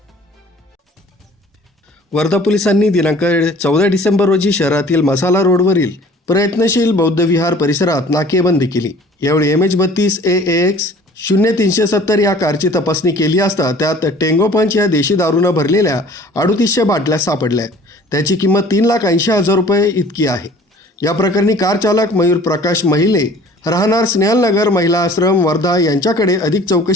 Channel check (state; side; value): normal; both; correlation 0.50